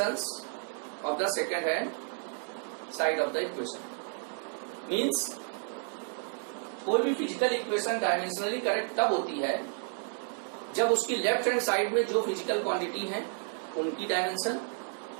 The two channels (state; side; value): silent; left; 57 dB below the other